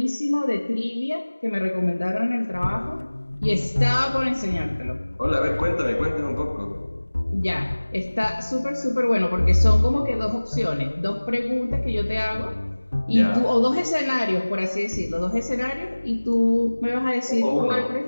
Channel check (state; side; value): inverted; both; correlation -1.00